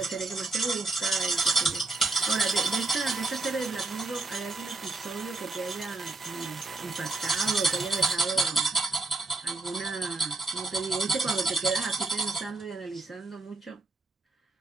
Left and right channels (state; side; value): quieter; left; 3.3 dB